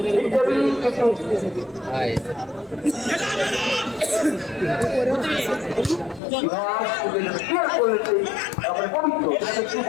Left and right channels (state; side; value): drops out; right; at 6.2 s